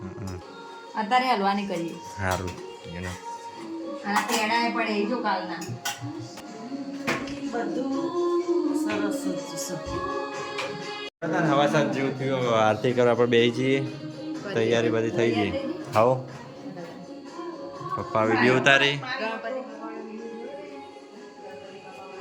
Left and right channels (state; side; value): identical; both; correlation 1.00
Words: અત્યારે હલવાની કરીએ. સારું એનો અને પેડા એ પડે એ જો કાલના. હવા સાત જેવું થયું. આરતી કરવા પર બેસી જઈએ, તૈયારી બધી થઈ ગઈ. આવો પપ્પા વિડીયો ઉતારી.